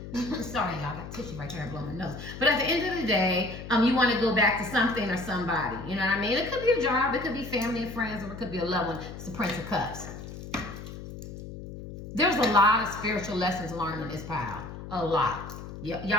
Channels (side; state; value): left; noise; hum, 11 dB below the sound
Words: Sorry, y'all, I got tissue right there and blowing my nose. But at the end of the day, you want to go back to something or somebody. You know what I mean? It could be a job, it could be family and friends, or it could be a loved one. It's the Prince of Cups. There's a lot of spiritual lessons learned in this pile. A lot.